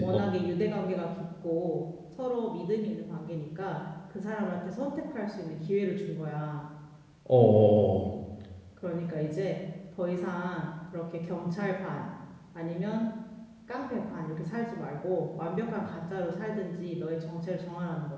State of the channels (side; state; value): both; identical; correlation 1.00